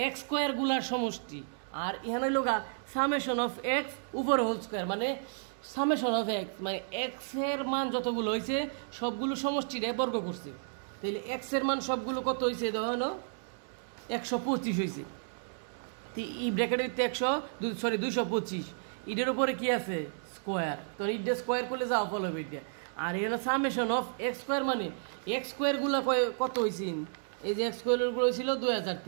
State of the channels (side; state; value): left; silent; digital silence